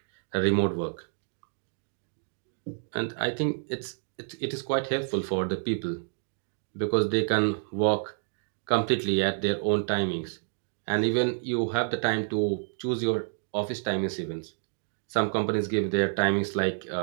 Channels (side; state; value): left; silent; digital silence